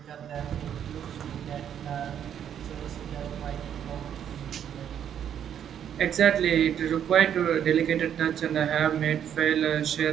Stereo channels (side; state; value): left; quieter; 9.2 dB